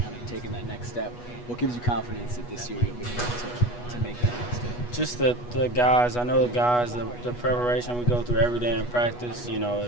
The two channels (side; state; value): right; late; 8.3 ms